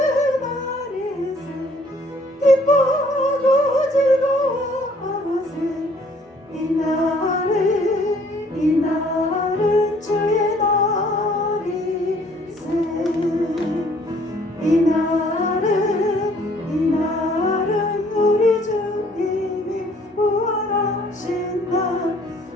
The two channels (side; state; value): both; normal; correlation 0.59